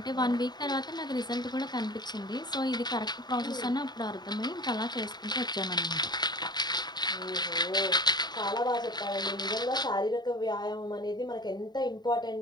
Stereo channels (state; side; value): late; right; 0.20 ms